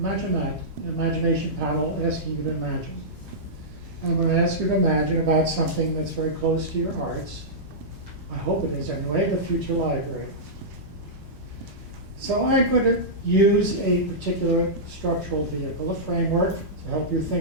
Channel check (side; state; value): both; normal; correlation -0.13